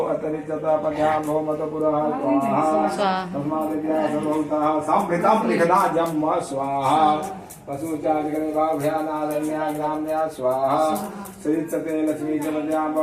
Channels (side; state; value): both; identical; correlation 1.00